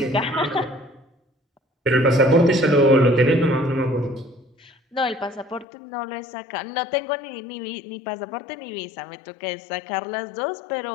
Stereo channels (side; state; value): right; drops out; at 5.7 s